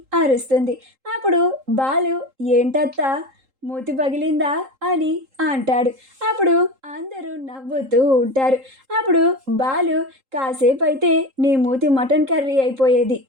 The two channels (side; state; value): left; late; 3.8 ms